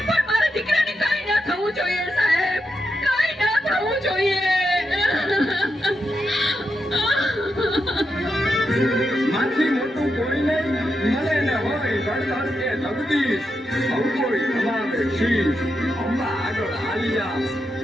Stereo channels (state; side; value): normal; both; correlation 0.85